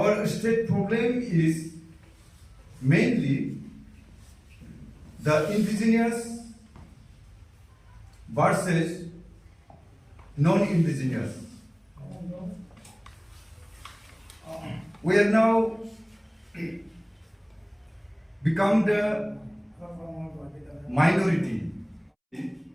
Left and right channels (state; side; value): identical; both; correlation 1.00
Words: state problem is mainly the indigenous versus non-indigenous. We are now become the minority.